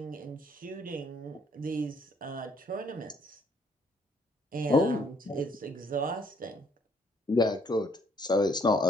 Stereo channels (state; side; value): normal; both; correlation 0.65